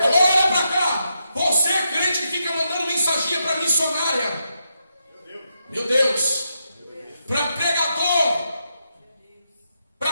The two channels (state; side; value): inverted; both; correlation -0.83